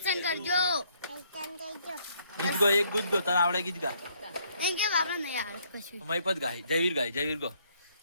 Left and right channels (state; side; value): inverted; both; correlation -0.68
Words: કરજો. ગીત ગો. એક ગીત ગો તને આવડે ગીત ગા. મહિપત ગાય. જયવીર ગો.